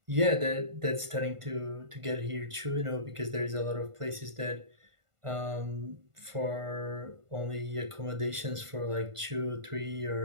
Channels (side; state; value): left; late; 1.5 ms